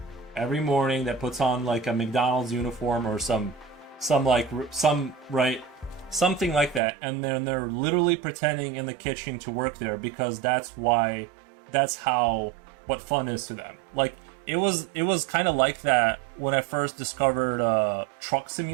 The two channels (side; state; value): left; drops out; at 6.8 s